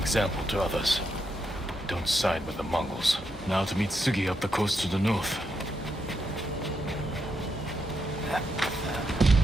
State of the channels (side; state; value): both; normal; correlation 0.81